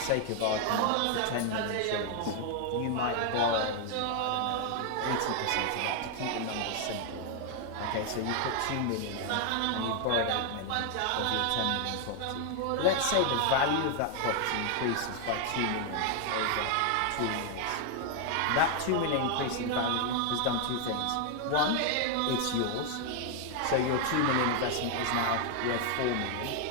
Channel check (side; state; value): both; different; correlation 0.00